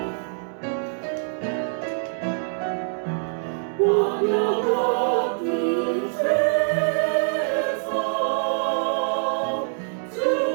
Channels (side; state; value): left; silent; digital silence